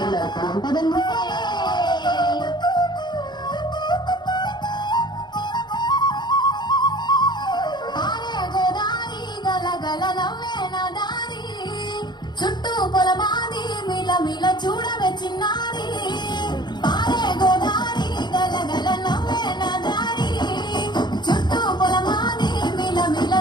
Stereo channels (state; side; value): late; right; 0.21 ms